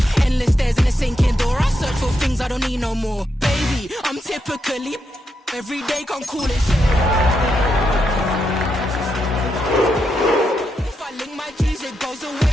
Endless stairs in a sinking door. I search for things I don't need no more. Baby, I'm typically every day can't call it shit. If I link my G's, it goes away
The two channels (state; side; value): normal; both; correlation 0.82